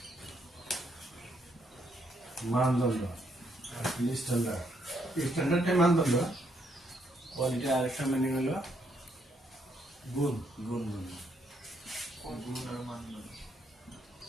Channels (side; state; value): both; normal; correlation 0.74